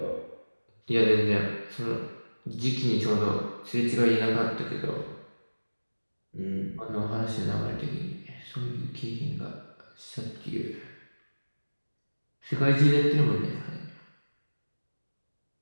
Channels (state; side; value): inverted; both; correlation -1.00